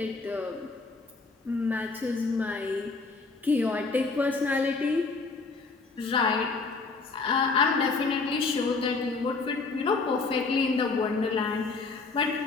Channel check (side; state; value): right; quieter; 4.1 dB